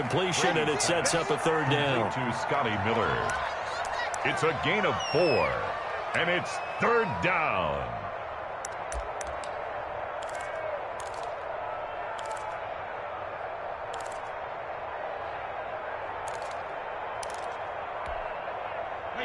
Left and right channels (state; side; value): identical; both; correlation 1.00